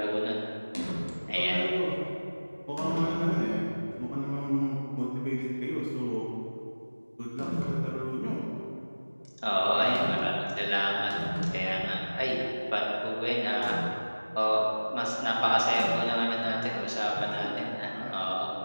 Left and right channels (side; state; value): both; inverted; correlation -1.00